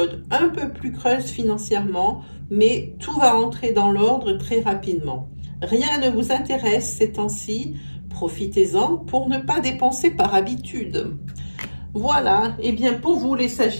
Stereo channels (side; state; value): both; inverted; correlation -1.00